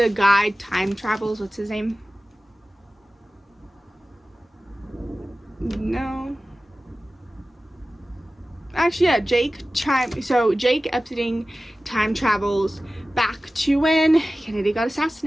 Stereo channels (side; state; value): both; normal; correlation 0.96